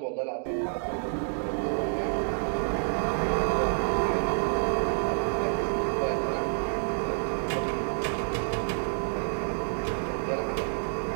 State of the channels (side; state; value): left; silent; digital silence